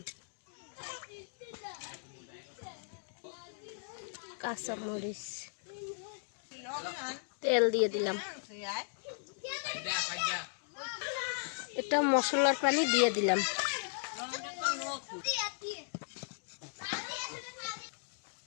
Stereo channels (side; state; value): right; silent; digital silence